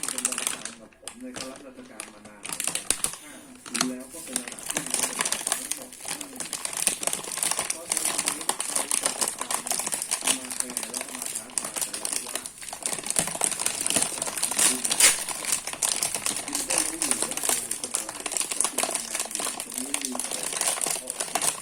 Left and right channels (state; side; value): identical; both; correlation 1.00